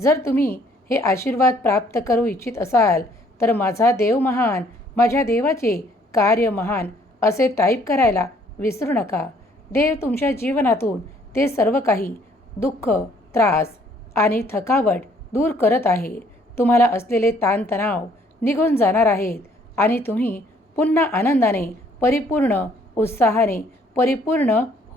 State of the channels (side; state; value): both; normal; correlation 0.63